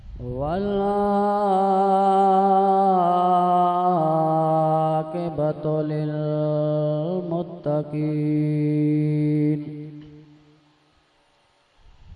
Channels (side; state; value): both; identical; correlation 1.00